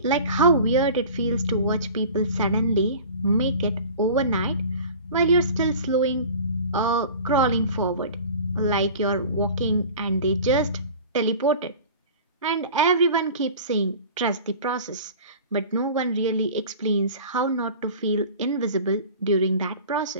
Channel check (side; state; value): both; inverted; correlation -0.40